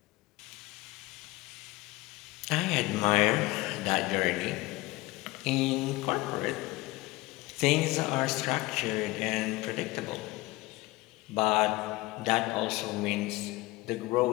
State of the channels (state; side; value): quieter; right; 20.4 dB